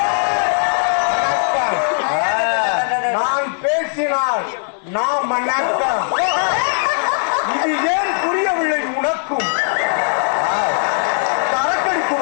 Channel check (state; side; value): silent; right; 65 dB below the other